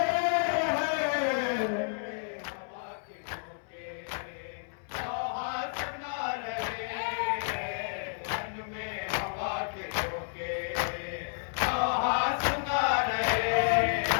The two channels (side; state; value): right; silent; 57 dB below the other